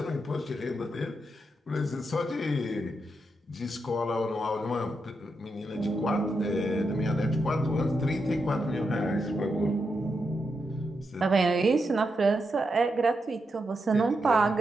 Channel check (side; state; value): both; normal; correlation 0.84